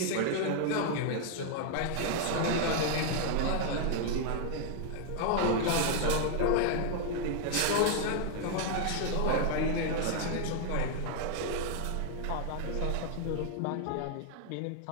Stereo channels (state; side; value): different; both; correlation 0.00